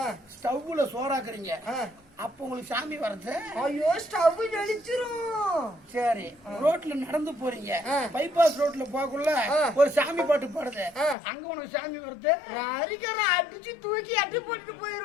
ஸ்டவ்ல சோறாக்குறீங்க, அப்ப உங்களுக்கு சாமி வருது. ஐயோ ஸ்டவ் ஜெலிச்சிரும். சரி ரோட்ல நடந்து போறீங்க, பைபாஸ் ரோட்ல போகக்குள்ள ஒரு சாமி பாட்டு பாடுது, அங்க உனக்கு சாமி வருது. அரிக்கரை அடிச்சு தூக்கி அட்டி போட்டுட்டு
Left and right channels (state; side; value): drops out; right; at 11.2 s